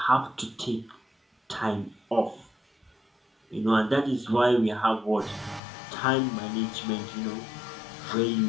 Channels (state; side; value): drops out; right; at 5.6 s